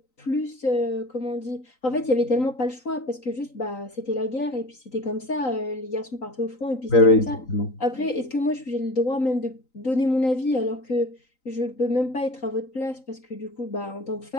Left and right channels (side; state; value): right; late; 3.9 ms